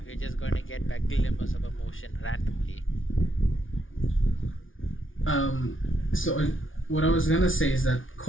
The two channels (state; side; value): late; right; 0.57 ms